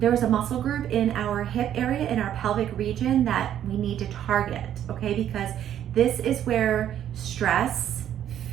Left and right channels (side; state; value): left; quieter; 10.6 dB